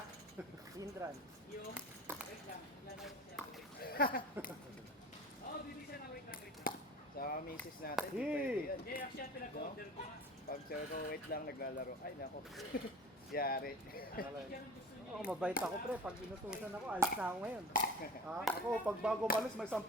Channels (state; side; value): normal; both; correlation 0.38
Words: Hindran. yung, wait lang. Lalaro siya, wait lang. Oo, bibig siya na wait lang. Sa misis natin, di Hey! pwede yan. Hindi, actually, pinag-order ko nga. Pag sabi ko, wait lang, naglalaro. Ay, nako. Yari. Yan ang gusto niya. Oo, mabait ako pre. Pag inutusan ako, alis na ako ngayon. Ha? Ako, pag bago malis, may 10